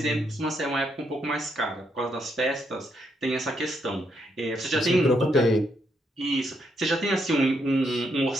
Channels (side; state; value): both; normal; correlation 0.77